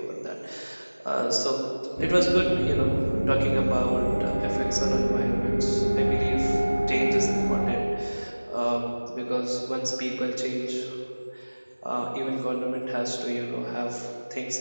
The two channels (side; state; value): both; inverted; correlation -1.00